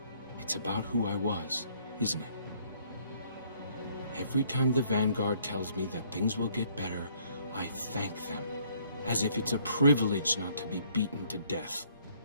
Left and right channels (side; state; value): both; inverted; correlation -0.64